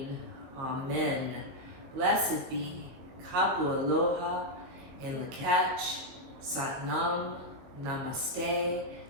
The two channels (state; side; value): late; left; 22 ms